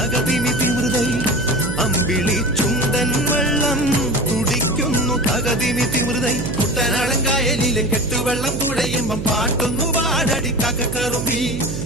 തിമൃതൈ അമ്പിളി ചുണ്ടൻ വെള്ളം തുടിക്കുന്നു തകതിനി തിമൃതൈ കുട്ടനാടൻ കായലിലെ കെട്ടുവെള്ളം തുഴയുമ്പം പാട്ടൊന്നു പാടടി കാക്കക്കറുമ്പി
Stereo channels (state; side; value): noise; right; hum, 6 dB below the sound